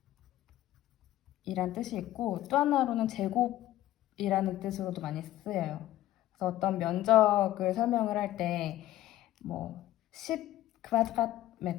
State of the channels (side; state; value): right; quieter; 14.5 dB